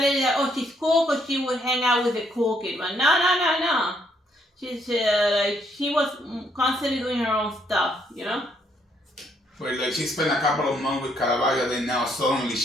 it is that, oh, she's cool because she would hang out with the cool kid. But no. She's like she was constantly doing her own stuff, you know. But like she spent a couple of months with Caravaggio, then now suddenly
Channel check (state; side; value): normal; both; correlation 0.71